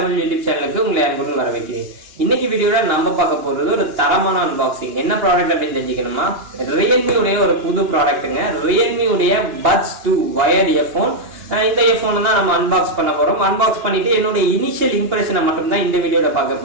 யூடியூப் சேனலுக்கு உங்களை அன்புடன் வரவேற்கிறேன். இன்னைக்கு வீடியோல நம்ம பார்க்க போறது ஒரு தரமான அன்பாக்சிங். என்ன ப்ராடக்ட் அப்படின்னு தெரிஞ்சுக்கணுமா, Realme உடைய ஒரு புது ப்ராடக்ட்டுங்க. Realme உடைய Buds 2 வயர்ட் இயர்போன். இந்த இயர்போன் தான் நம்ம அன்பாக்ஸ் பண்ண போறோம். அன்பாக்ஸ் பண்ணிட்டு என்னோட இனிஷியல் இம்ப்ரெஷனை மட்டும் தான் இந்த வீடியோல பார்க்க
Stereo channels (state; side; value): late; left; 2.9 ms